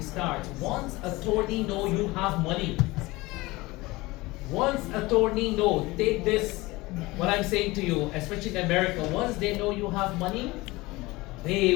starts. Once attorney know you have money, once attorney know, take this, what I'm saying to you, especially in America, once they know you have money, they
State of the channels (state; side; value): quieter; right; 21.3 dB